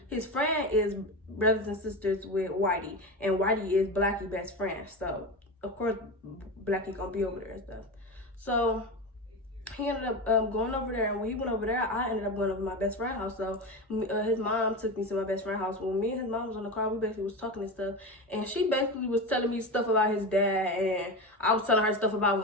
his friend is brothers and sisters with Whitey, and Whitey is Blackie best friend. So of course Blackie gonna be over there and stuff. So he ended up going over there, and when he went over there, I ended up going over to my best friend's house. So his mom took me to my best friend's house. When me and his mom was on the car, we basically was talking and stuff, and she basically was telling me stuff about his dad, and I was telling her stuff about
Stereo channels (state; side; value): normal; both; correlation 0.23